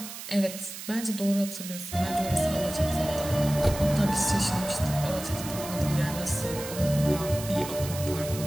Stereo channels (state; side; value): noise; right; hiss, 10 dB below the sound